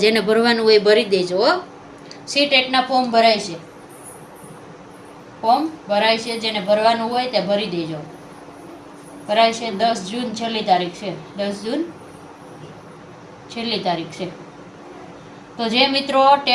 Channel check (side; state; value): both; identical; correlation 1.00